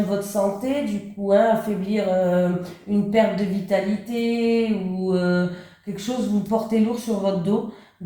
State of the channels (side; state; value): both; identical; correlation 1.00